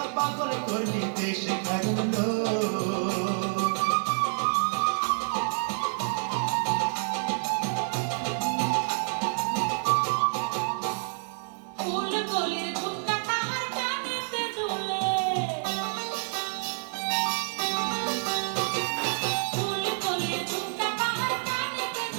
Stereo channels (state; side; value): silent; left; digital silence